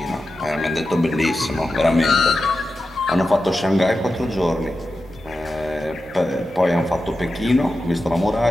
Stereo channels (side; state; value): both; normal; correlation 0.91